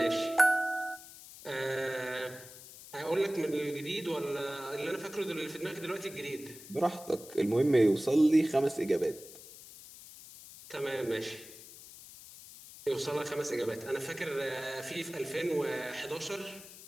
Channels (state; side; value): noise; left; hiss, 17 dB below the sound